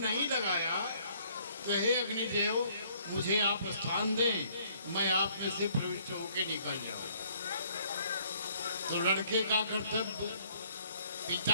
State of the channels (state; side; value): inverted; both; correlation -0.62